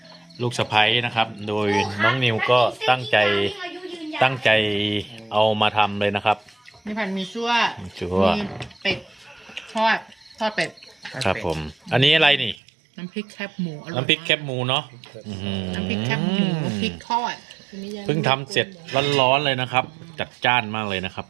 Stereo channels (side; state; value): left; drops out; at 12.6 s